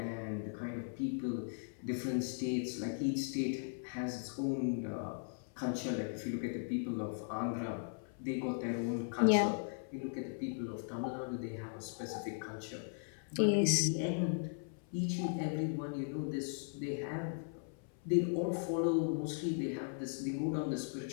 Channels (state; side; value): silent; right; 52 dB below the other